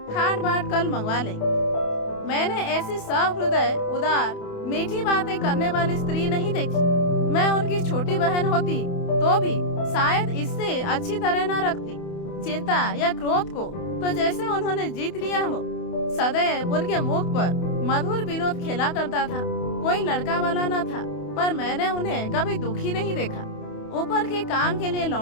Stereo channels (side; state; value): right; late; 28 ms